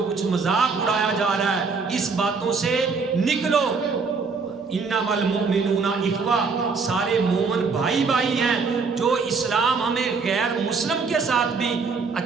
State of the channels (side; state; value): left; quieter; 4.8 dB